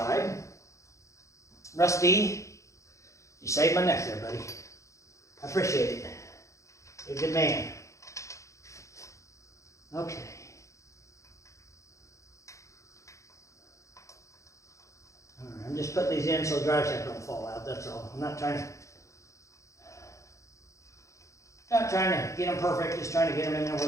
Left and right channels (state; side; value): late; right; 0.15 ms